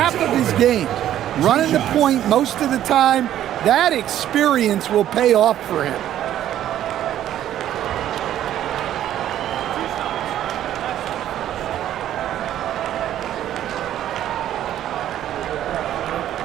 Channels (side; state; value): left; quieter; 11.8 dB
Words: of his games, running the point most of the time. That experience will pay off for him.